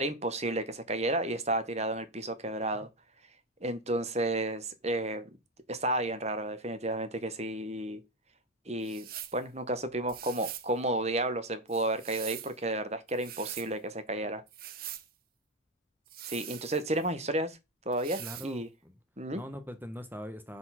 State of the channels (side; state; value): both; normal; correlation 0.13